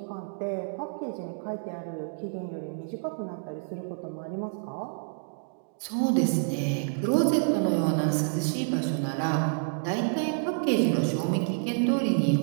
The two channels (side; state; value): left; silent; digital silence